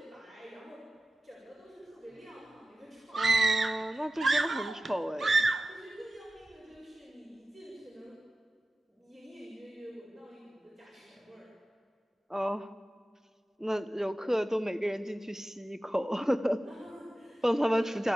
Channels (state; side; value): normal; both; correlation 0.95